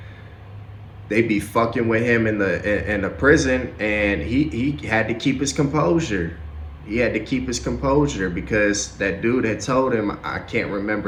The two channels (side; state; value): both; identical; correlation 1.00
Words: they be fucking with him in the prison, and he had to keep his composure. He had to keep his composure because that dude had told him, I can't